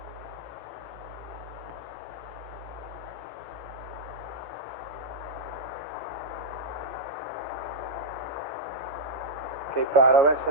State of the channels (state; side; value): normal; both; correlation -0.06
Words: Okay, Paolo, that